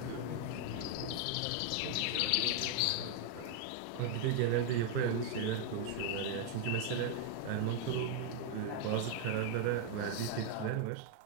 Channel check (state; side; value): different; both; correlation 0.00